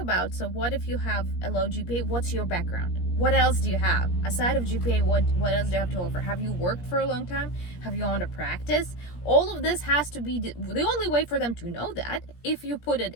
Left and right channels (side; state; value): right; late; 17 ms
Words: So what if you have a low GPA? What's your background? What else do you have? Aside of GPA, what else do you have to offer? Have you worked for a long time? Have you owned a practice? All of this has to be, the only way for them to know that, if you put it